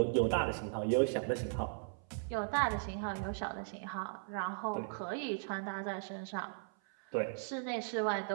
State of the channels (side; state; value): left; silent; 53 dB below the other